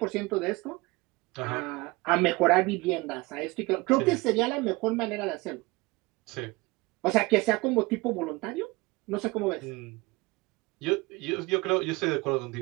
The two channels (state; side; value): quieter; left; 23.7 dB